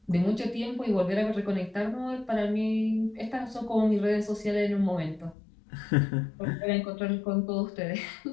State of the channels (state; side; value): drops out; right; at 5.4 s